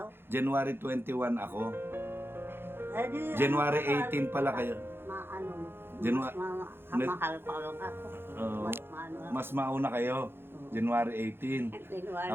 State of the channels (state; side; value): late; left; 0.11 ms